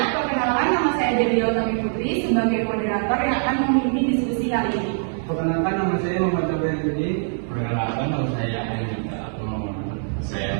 perkenalkan, nama saya Dewi Utami Putri sebagai moderator yang akan memimpin diskusi kali ini. Perkenalkan, nama saya Muhammad Jabar Yudi. Perkenalkan, nama saya Anita atau saya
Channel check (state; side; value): silent; left; digital silence